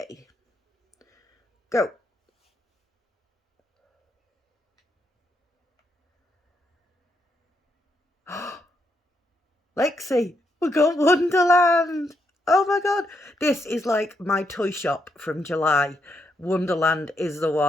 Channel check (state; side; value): normal; both; correlation 0.79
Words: Go. Lexi, we got Wonderland. Oh my god. This is like my toy shop from July. Wonderland is the